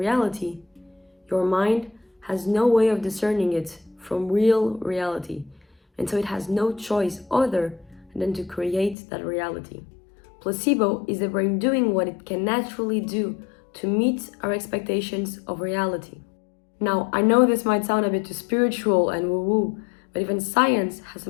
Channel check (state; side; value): drops out; right; at 9.0 s